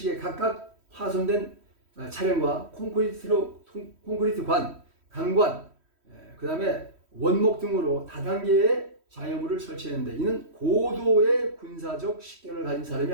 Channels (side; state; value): left; late; 3.1 ms